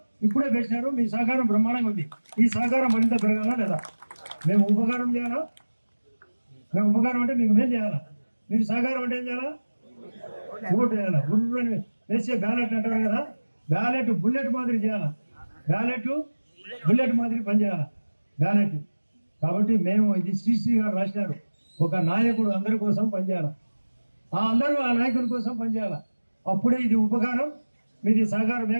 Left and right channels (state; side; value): inverted; both; correlation -1.00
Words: ఇప్పుడే పెట్టినారు. మీ సహకారం బ్రహ్మాండంగా ఉంది. ఈ సహకారం మరింత పెరగాలా లేదా? మేము ఉపకారం చేయాలా? మేము ఉపకారం అంటే మీకు మేం చేయాలా? మీరు సహకారం అంటే ఏం చేయాలా? ఓటు వేయాలా? గుర్రు వేసే బ్యాలెట్ అంటారు కదా, బ్యాలెట్ బుల్లెట్ మాదిరి చేయాలా? బ్యాలెట్ బుల్లెట్ మాదిరి పనిచేయాలా బ్యాలెట్. కాబట్టి మేము ఇది శ్రీశ్రీ గారు రాసినారు, ఒక నాయకుడు అందరి కోసం పనిచేయాలి, అందరూ ఆ నాయకుడి కోసం పనిచేయాలి. అప్పుడే ఇది ఉపకారం, మీది సహకారం